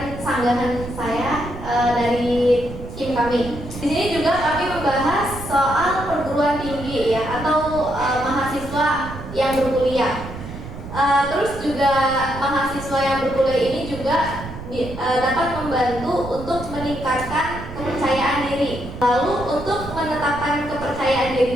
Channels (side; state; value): right; noise; rumble, 11 dB below the sound